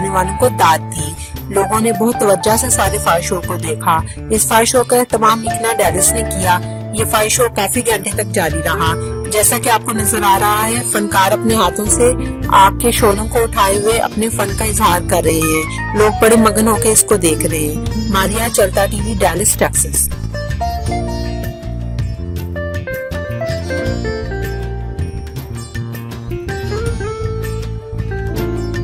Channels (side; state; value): both; identical; correlation 1.00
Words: والوں کو داد دی۔ لوگوں نے بہت توجہ سے سارے فائر شو کو دیکھا۔ اس فائر شو کا اہتمام مکنا ڈیلس نے کیا۔ یہ فائر شو کافی گھنٹے تک جاری رہا۔ جیسا کہ آپ کو نظر آ رہا ہے، فنکار اپنے ہاتھوں سے آگ کے شعلوں کو اٹھائے ہوئے اپنے فن کا اظہار کر رہے ہیں۔ لوگ بڑے مگن ہو کے اس کو دیکھ رہے ہیں۔ ماریا، چلتا ٹی وی، ڈیلاس، ٹیکساس۔